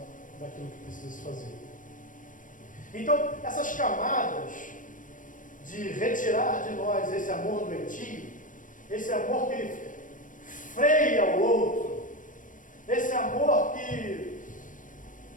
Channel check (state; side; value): late; right; 0.38 ms